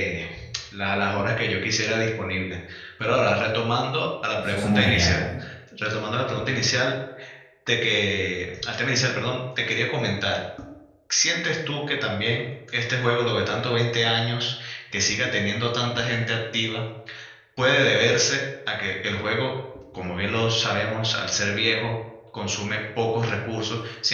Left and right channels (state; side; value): identical; both; correlation 1.00